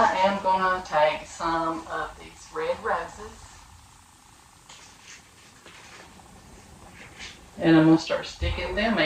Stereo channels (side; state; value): both; identical; correlation 1.00